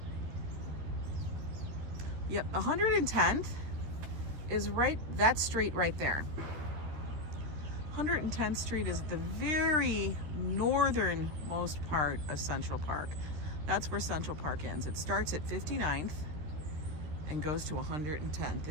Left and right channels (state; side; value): late; left; 13 ms